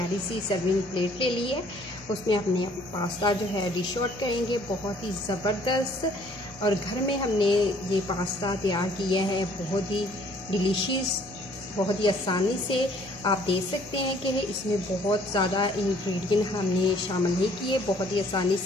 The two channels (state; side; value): noise; left; hum, 21 dB below the sound